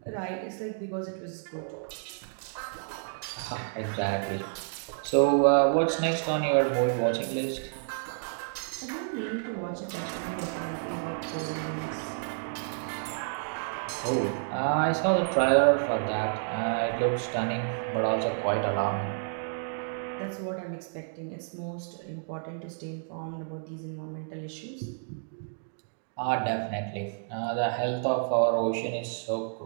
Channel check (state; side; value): silent; left; digital silence